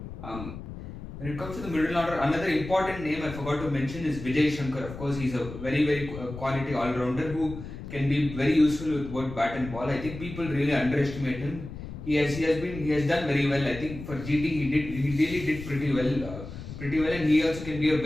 When it comes to the middle order, another important name I forgot to mention is Vijay Shankar. Of course, he's a very quality all-rounder who can be very useful with both bat and ball. I think people really underestimate him. He has done very well. I think for GT he really did pretty well, and he also can be a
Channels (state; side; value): noise; left; rumble, 11 dB below the sound